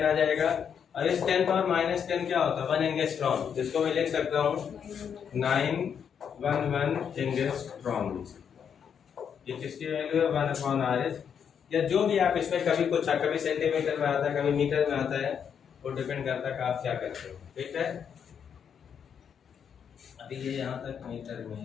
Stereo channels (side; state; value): right; quieter; 7.6 dB